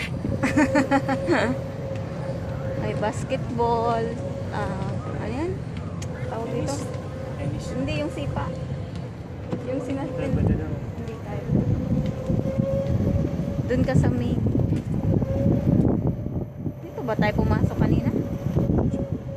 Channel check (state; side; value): identical; both; correlation 1.00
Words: May basketball. Ano yan? Tawag dito? Tennis. Hindi, yung sipa. Yung sinaspin. Pwede daw. Hindi tayo. Doon ka sa main. Dito ba tayo pumasok kanina?